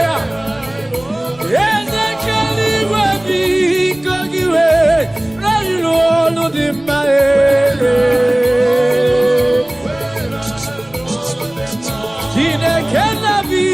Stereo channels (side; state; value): right; noise; rumble, 27 dB below the sound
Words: Eze kere igwe biko gị were ilu ọlụ dị mma. Chineke na